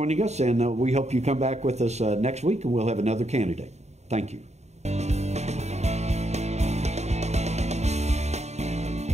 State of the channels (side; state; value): left; late; 0.32 ms